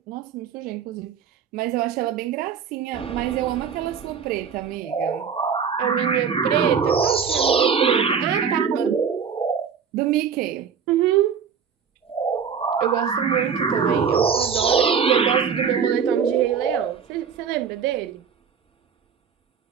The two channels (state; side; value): quieter; left; 6.9 dB